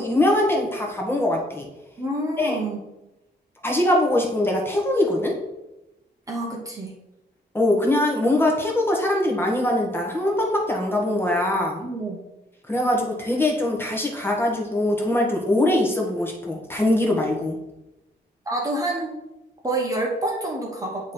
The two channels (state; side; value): normal; both; correlation 0.67